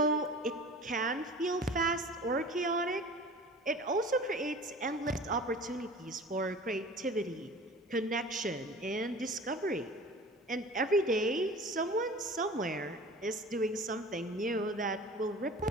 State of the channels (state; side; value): normal; both; correlation 0.40